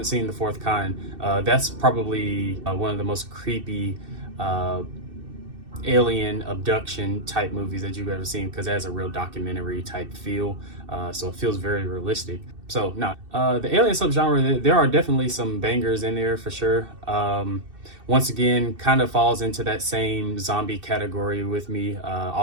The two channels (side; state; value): left; late; 2.6 ms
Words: seen The Fourth Kind, that's probably one of the most creepy alien abduction type movies that you've ever seen, because it has a real documentary type feel. So it feels very realistic. So now, the alien subgenre, there are definitely some bangers in there for sure. Once again, kind of falls into that same zombie category with me.